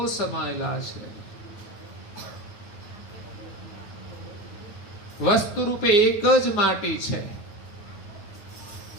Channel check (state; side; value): late; right; 9.5 ms